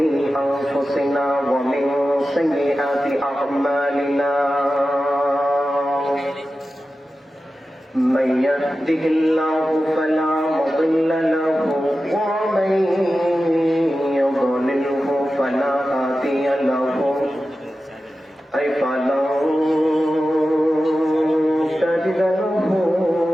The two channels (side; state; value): both; normal; correlation 0.93